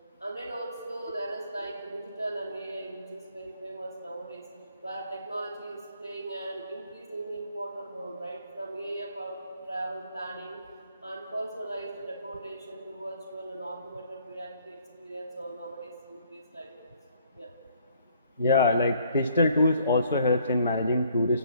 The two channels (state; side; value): inverted; both; correlation -0.63